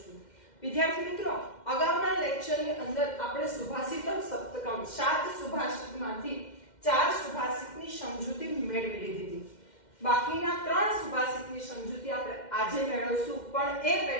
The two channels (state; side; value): late; right; 2.1 ms